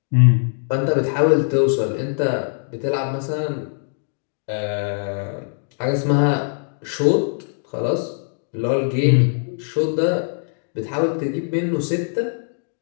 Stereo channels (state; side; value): silent; right; digital silence